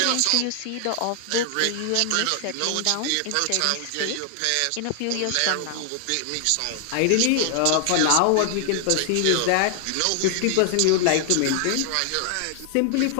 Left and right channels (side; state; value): both; different; correlation 0.00